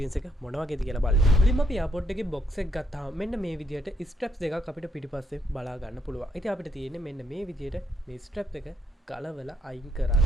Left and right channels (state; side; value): normal; both; correlation 0.75